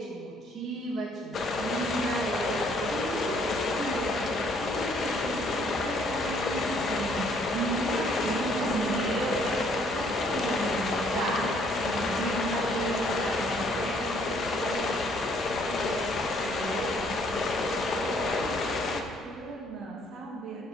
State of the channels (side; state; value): both; normal; correlation 0.64